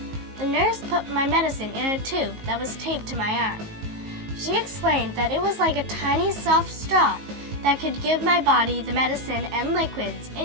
The nurse put my medicine in a tube that was taped to my arm. She explained that it was like a tiny soft straw that could give my body the medicine and liquids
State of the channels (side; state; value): left; late; 19 ms